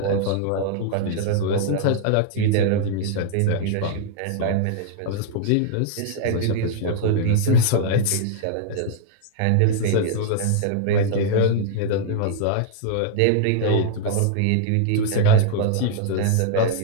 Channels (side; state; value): both; different; correlation -0.01